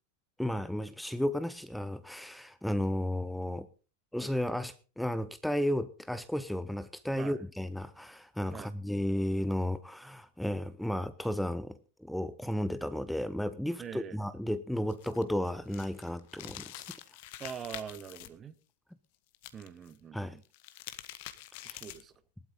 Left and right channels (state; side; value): normal; both; correlation 0.94